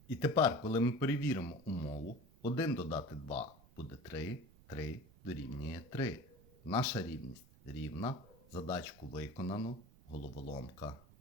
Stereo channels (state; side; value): noise; right; rumble, 24 dB below the sound